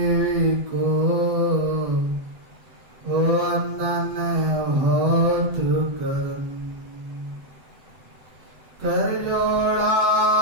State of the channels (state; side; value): late; left; 8.2 ms